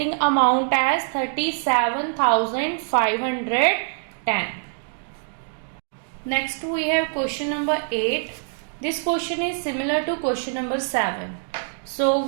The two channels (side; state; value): left; silent; digital silence